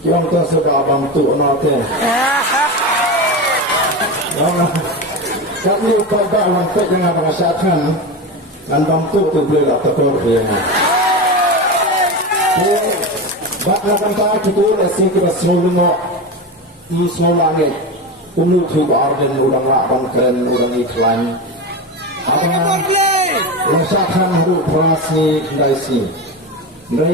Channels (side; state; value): both; normal; correlation 0.21